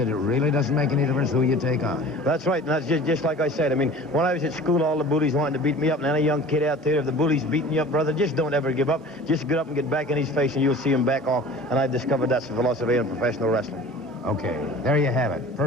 it really doesn't make any difference who you take on. That's right, and that's just like I said. I mean, when I was at school, all the bullies wanted to beat me up, and any young kid out there, if the bully's beating you up, brother, just don't ever give up. Just get up and get back in his face, and you'll see him back off. And I've discovered that's the philosophy in professional wrestling. Okay, there you have it.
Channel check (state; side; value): normal; both; correlation 0.42